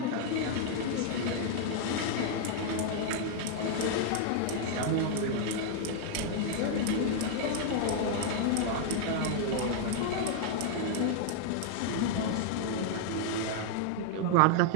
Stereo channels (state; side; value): different; both; correlation 0.00